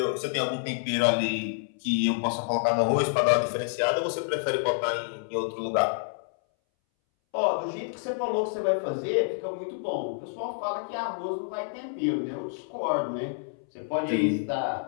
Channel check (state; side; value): silent; right; 59 dB below the other